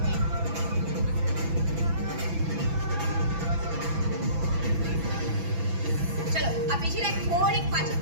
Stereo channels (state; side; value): late; left; 6.1 ms